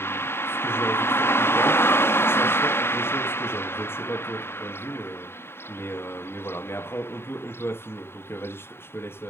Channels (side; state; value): right; late; 0.11 ms